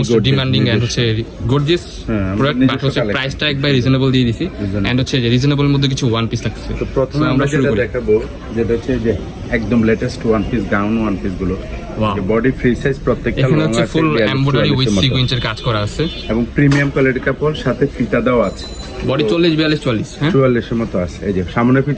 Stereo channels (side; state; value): both; identical; correlation 1.00